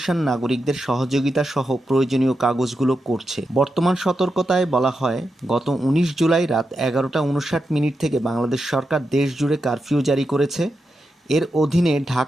নাগরিকদের সহযোগিতা সহ প্রয়োজনীয় কাগজগুলো করছে। বর্তমান সতর্কতায় বলা হয়, গত 19 জুলাই রাত 11:59 থেকে বাংলাদেশ সরকার দেশ জুড়ে কারফিউ জারি করেছে। এর অধীনে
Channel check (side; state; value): both; normal; correlation 0.87